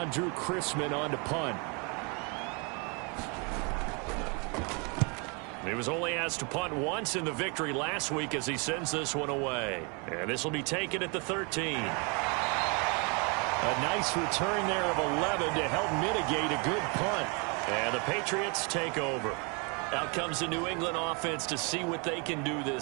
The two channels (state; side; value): quieter; left; 33.0 dB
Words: Drew Chrisman on to punt. He was only asked to punt once in the victory last week as he sends this one away. And this will be taken at the 13. A nice return there of 11 to help mitigate a good punt. And the Patriots take over. Out comes the New England offense to see what they can do